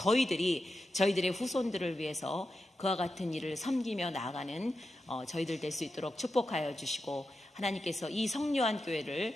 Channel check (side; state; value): both; normal; correlation 0.89